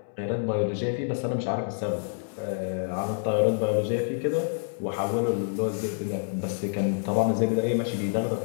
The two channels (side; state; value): right; silent; digital silence